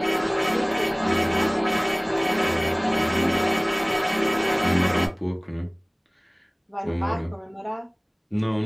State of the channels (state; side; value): identical; both; correlation 1.00